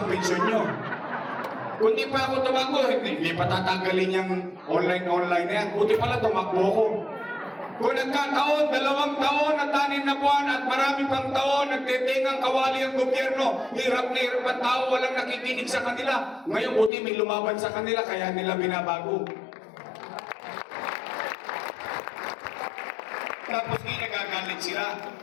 pensyon nyo. Kung hindi pa ako tumakbo, hindi pa tatanggalin yung online na yan. Buti pala tumakbo ko. Kung nagkataon, 2 taon at 6 na buwan at marami pang taon, nagtitingang kawali ang gobyerno, hirap na hirap ang tao, walang nakikinig sa kanila. Ngayon, buti may lumaban sa kanila, kaya nila binabago. Tapos nagagalit sila,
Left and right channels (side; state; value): right; drops out; at 16.9 s